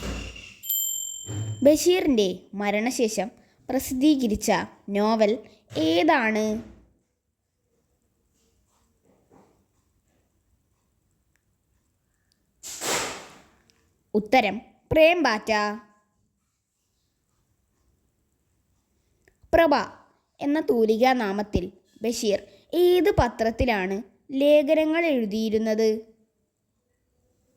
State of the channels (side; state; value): both; identical; correlation 1.00